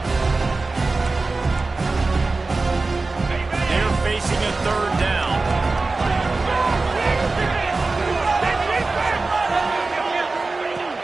They're facing a third down.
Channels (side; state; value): left; quieter; 3.6 dB